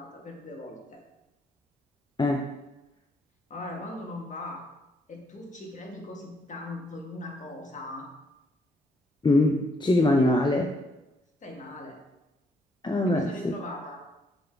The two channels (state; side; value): normal; both; correlation 0.73